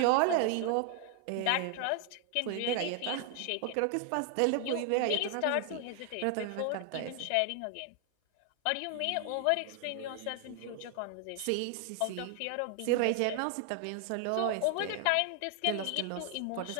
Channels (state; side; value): different; both; correlation 0.00